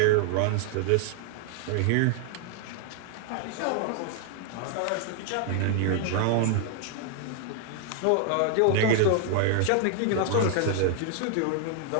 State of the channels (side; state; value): both; different; correlation 0.00